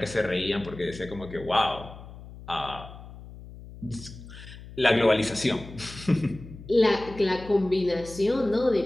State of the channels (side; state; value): left; noise; hum, 16 dB below the sound